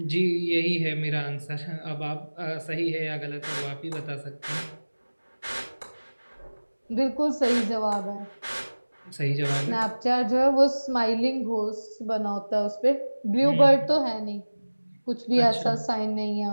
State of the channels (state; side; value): inverted; both; correlation -1.00